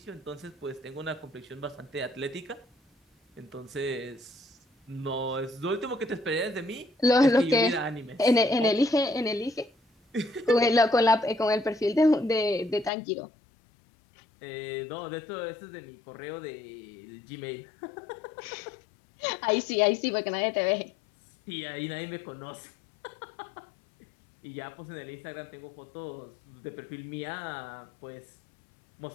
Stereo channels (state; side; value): drops out; right; at 12.9 s